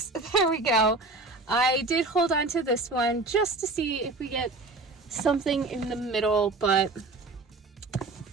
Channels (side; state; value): left; quieter; 3.3 dB